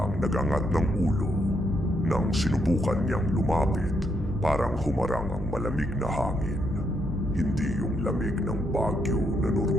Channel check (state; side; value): normal; both; correlation 0.77